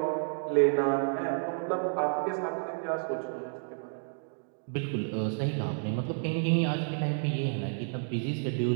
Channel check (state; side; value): silent; left; digital silence